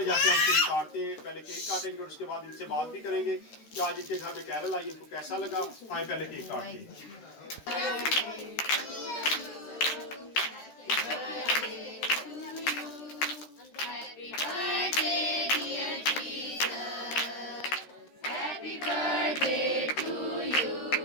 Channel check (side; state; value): right; late; 13 ms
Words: जाके हम केक काटते हैं। पहले केक काटेंगे और उसके बाद इनसे बात भी करेंगे कि आज इनके घर में कैरल आई, इनको कैसा लगा। आए पहले केक काटते हैं।